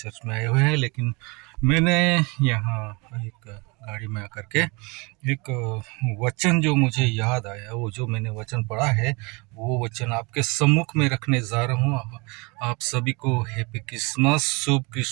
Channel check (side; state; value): left; quieter; 27.9 dB